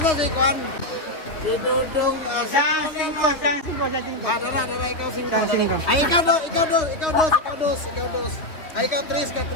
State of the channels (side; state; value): right; late; 3.4 ms